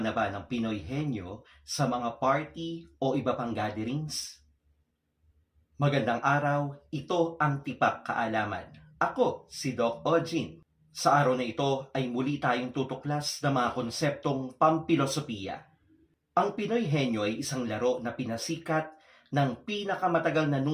ba ng Pinoy Henyo sa mga party o iba pang gatherings? Magandang araw, ito ang Tipak Kaalaman. Ako si Doc Ojin. Sa araw na ito ay muli tayong tutuklas ng mga konseptong pampilosopiya. Ang Pinoy Henyo ay isang laro na pinasikat ng pinakamatagal na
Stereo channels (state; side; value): identical; both; correlation 1.00